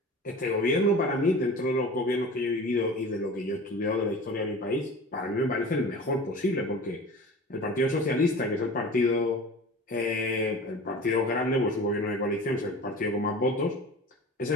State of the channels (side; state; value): both; normal; correlation 0.37